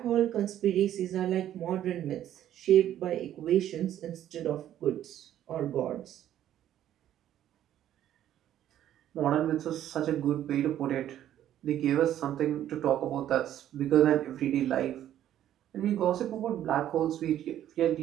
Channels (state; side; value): quieter; left; 11.6 dB